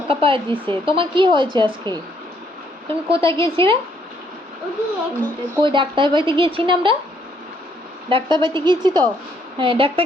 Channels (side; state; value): both; normal; correlation 0.69